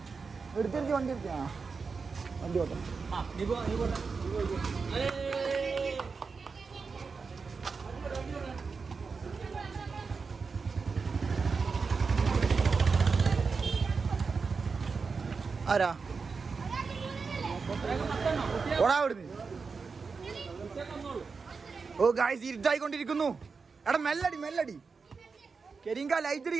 എടുത്തിരിക്കും വണ്ടി ഓട്ടം. ആരാ ഓടാ അവിടുന്ന്. ഓ ഗായ്സ് ഇരുട്ടായിക്കൊണ്ടിരിക്കുന്നു. എടാ മെല്ലടി കെരിങ്ക ലൈറ്റ്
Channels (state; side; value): quieter; left; 4.9 dB